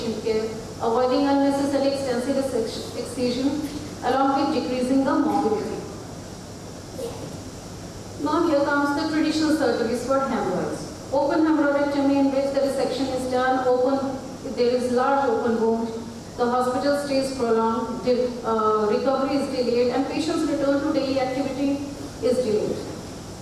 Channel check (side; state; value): both; identical; correlation 1.00